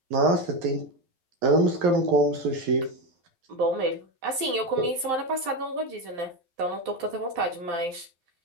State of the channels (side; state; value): left; late; 12 ms